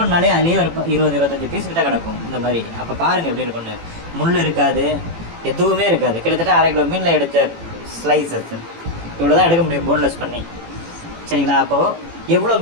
அதுலேயே ஒரு 20-25 பீஸ் கிட்ட கிடக்கும் இந்த மாதிரி. அப்போ பாருங்கள் எப்படி இருக்கும்னு. முள் இருக்காது, எதுவுமே இருக்காது. கிட்டத்தட்ட 1/2 கிலோ மீனில் எடுத்த ஸ்லைசஸ் இவ்வளோ தான் எடுக்க முடியும் போன்லெஸ் பண்ணி. சரிங்களா? அப்போது எவ்வளோ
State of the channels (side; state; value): left; late; 18 ms